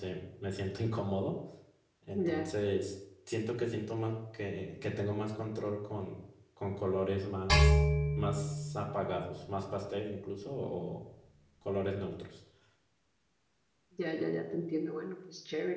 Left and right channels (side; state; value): both; identical; correlation 1.00